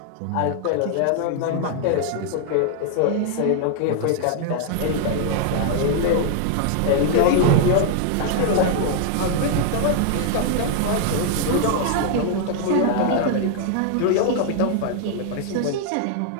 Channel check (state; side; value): different; both; correlation 0.00